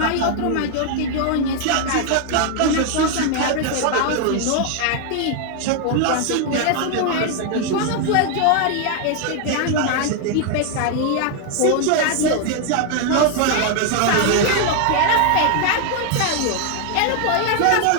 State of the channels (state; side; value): different; both; correlation 0.00